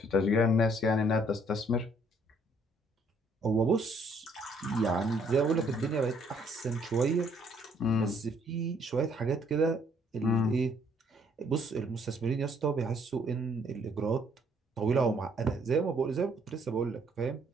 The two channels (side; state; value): both; normal; correlation 0.65